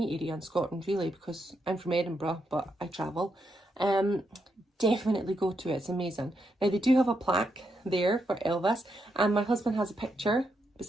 area in Scotland really, because I'm from Edinburgh, but I travel, definitely go to it. It's amazing. Now they do have a plaque there for Elvis, and my husband has a picture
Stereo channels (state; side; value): normal; both; correlation 0.81